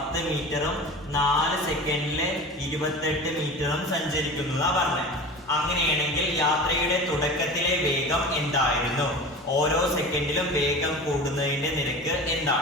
മീറ്ററും 4 സെക്കൻഡില് 28 മീറ്ററും സഞ്ചരിക്കുന്നു എന്നാ പറഞ്ഞത്. അങ്ങനെയാണെങ്കിൽ യാത്രയുടെ തുടക്കത്തിലെ വേഗം എന്തായിരുന്നു? ഓരോ സെക്കൻഡിലും വേഗം കൂടുന്നതിന്റെ നിരക്ക്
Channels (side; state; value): both; normal; correlation 0.34